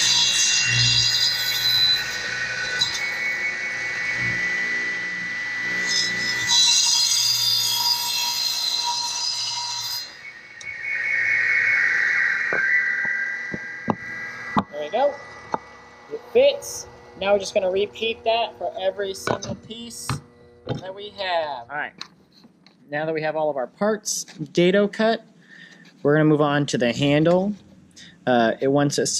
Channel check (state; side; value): identical; both; correlation 1.00